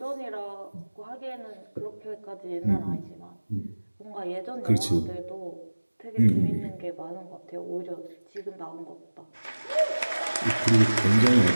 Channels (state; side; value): inverted; both; correlation -1.00